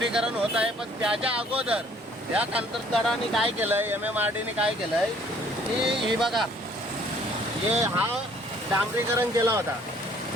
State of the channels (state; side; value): normal; both; correlation 0.59